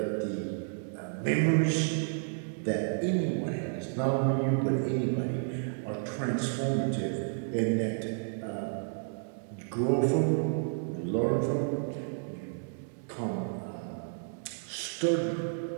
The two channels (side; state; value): left; silent; digital silence